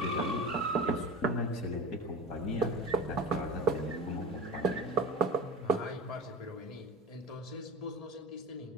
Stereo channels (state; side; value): normal; both; correlation 0.32